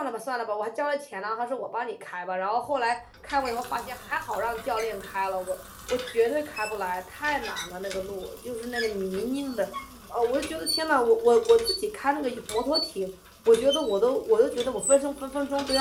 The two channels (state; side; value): identical; both; correlation 1.00